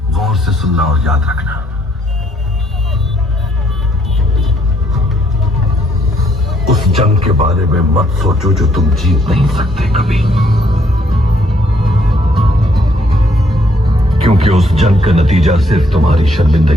गौर से सुनना और याद रखना। उस जंग के बारे में मत सोचो जो तुम जीत नहीं सकते कभी, क्योंकि उस जंग का नतीजा सिर्फ तुम्हारी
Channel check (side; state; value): both; normal; correlation 0.69